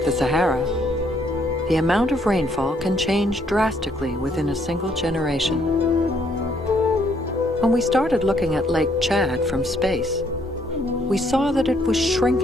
the Sahara, the amount of rainfall can change drastically within a single generation. When we started looking at Lake Chad from space, we saw that it was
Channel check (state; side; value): normal; both; correlation 0.68